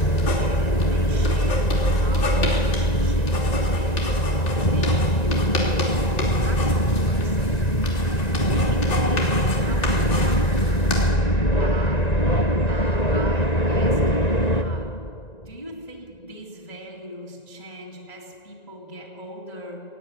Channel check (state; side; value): late; right; 1.9 ms